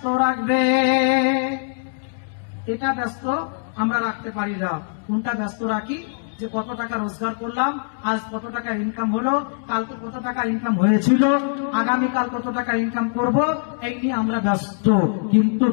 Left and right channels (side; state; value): right; silent; digital silence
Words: রাখবে। এটা ব্যস্ত আমরা রাখতে পারি না। কোনটা ব্যস্ত রাখি? যে কত টাকা রোজগার করলাম, আজ কত টাকা ইনকাম হলো, কালকে কত টাকা ইনকাম হয়েছিল, আগামীকাল কত টাকা ইনকাম করব, এই নিয়ে আমরা ব্যস্ত। কিন্তু